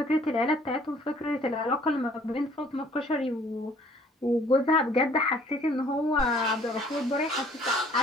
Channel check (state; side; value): normal; both; correlation 0.57